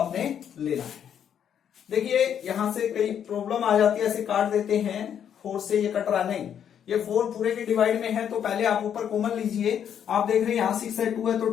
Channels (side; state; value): right; quieter; 8.9 dB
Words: लेना है। देखिए यहां से कई प्रॉब्लम आ जाती है, ऐसे काट देते हैं, 4 से ये कट रहा नहीं, ये 4 पूरे के डिवाइड में है, तो पहले आप ऊपर कॉमन लीजिए। आप देख रहे हैं यहां 6 है, 2 है, तो